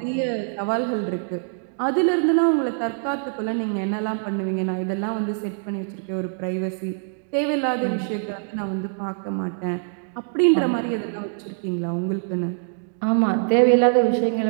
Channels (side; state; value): left; silent; digital silence